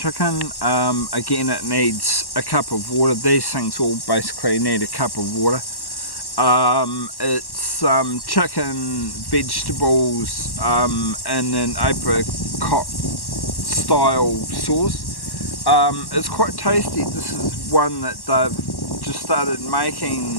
Again, it needs a cup of water. These things all basically need a cup of water. It's chicken, vegetables, and an apricot style sauce. It's quite tasty. This is one that they've just started making,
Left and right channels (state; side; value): late; right; 1.1 ms